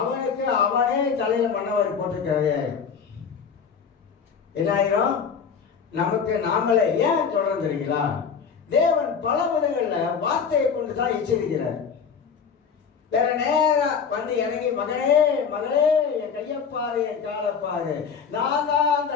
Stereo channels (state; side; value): quieter; right; 6.5 dB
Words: அவனே தலையில மண்ணவரை போட்டுக்கிறது. என்ன ஆயிரும்? நமக்கு நாமளே ஏன் சொல்றோம் தெரியுங்களா? தேவன் பல விதங்கள்ல வார்த்தையை கொண்டுதான் எச்சரிக்கிறார். வேற நேரா வந்து இறங்கி மகனே மகளே என் கையப்பாரு என் காலப்பாரு, நான் தான் அந்த